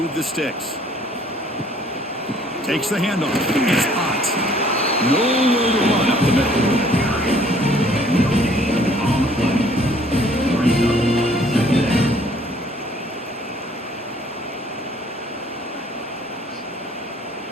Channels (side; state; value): both; normal; correlation 0.59